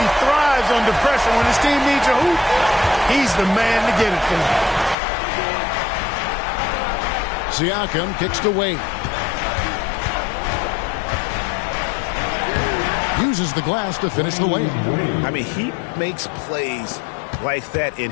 thrives under pressure. When his team needs a hoop, he's the man to get it for him. Siakam kicks to Wade. Uses the glass to finish the layup. I mean, he makes plays like that in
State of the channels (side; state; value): right; drops out; at 5.0 s